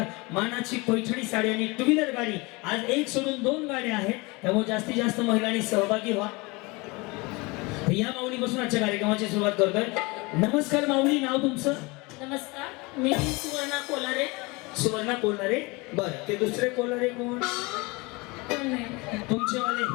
मानाची पैठणी साडी आणि टू व्हीलर गाडी. आज एक सोडून 2 गाड्या आहेत, त्यामुळे जास्तीत जास्त महिलांनी सहभागी व्हा. या माऊलीपासून आजच्या कार्यक्रमाची सुरुवात करतोय. नमस्कार माऊली, नाव तुमचं? नमस्कार, मी सुवर्णा कोलारे. सुवर्णा कोल्हारे. बरं, ते दुसरे कोल्हारे कोण? कोण नाही, तुमचे वाले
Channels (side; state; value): right; quieter; 25.6 dB